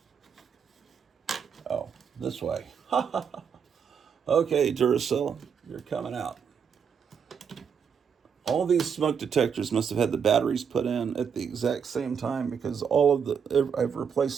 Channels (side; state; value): left; quieter; 7.0 dB